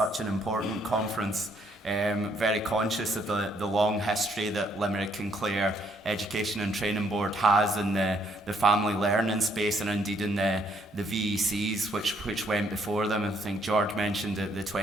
an important conference. Very conscious of the long history that Limerick and Clare Education and Training Board has in the family learning space, and indeed in the VECs which went before them. I think George mentioned the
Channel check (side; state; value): both; normal; correlation 0.69